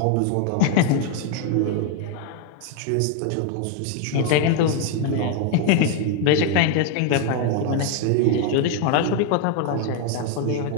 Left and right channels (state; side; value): different; both; correlation 0.00